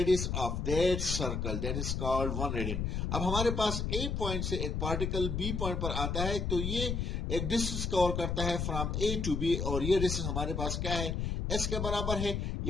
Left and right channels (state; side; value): noise; left; rumble, 1 dB below the sound